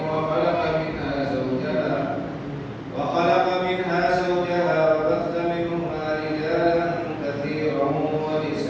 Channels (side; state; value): both; identical; correlation 1.00